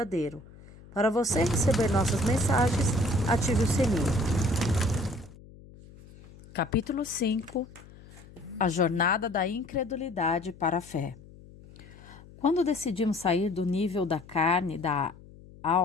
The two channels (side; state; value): left; noise; hum, 21 dB below the sound